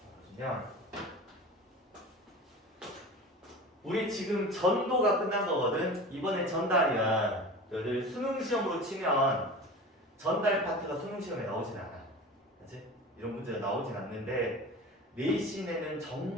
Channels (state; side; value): normal; both; correlation 0.34